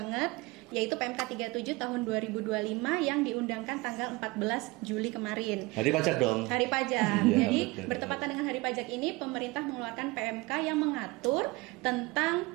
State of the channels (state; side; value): quieter; left; 23.4 dB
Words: yaitu PMK 37 tahun 2025 yang diundangkan tanggal 14 Juli kemarin. Hari pajak dong. Hari pajak. Ya, Jadi betul. bertepatan dengan hari pajak ini, pemerintah mengeluarkan PMK yang mengatur